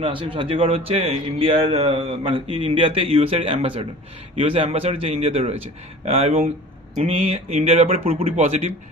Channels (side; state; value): both; normal; correlation 0.41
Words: আসে। সার্জিও গড হচ্ছে ইন্ডিয়ার মানে ইন্ডিয়াতে ইউএসের অ্যাম্বাসাডার, ইউএসএ অ্যাম্বাসাডার যে ইন্ডিয়াতে রয়েছে। এবং উনি ইন্ডিয়ার ব্যাপারে পুরোপুরি পজিটিভ,